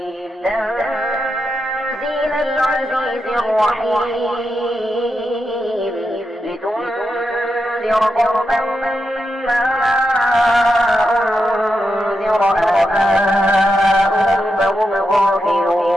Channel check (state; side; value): normal; both; correlation 0.86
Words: تنزيل العزيز الرحيم لتنذر قوما ما أنذر آباؤهم فهم